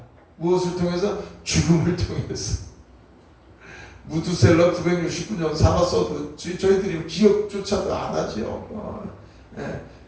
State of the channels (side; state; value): both; identical; correlation 1.00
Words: 무엇을 통해서? 죽음을 통해서. 무드셀러 969년 살았어도 저희들이 기억조차도 안 하죠.